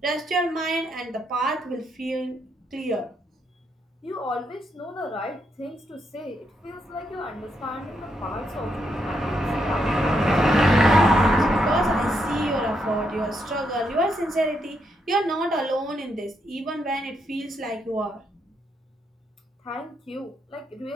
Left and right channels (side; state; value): both; normal; correlation 0.78